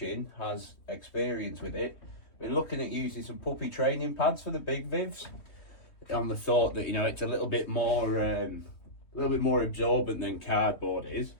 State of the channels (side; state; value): right; late; 3.2 ms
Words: has experience with it, been looking at using some puppy training pads for the big vivs, on the thought that, you know, it's a little bit more absorbent than cardboard is,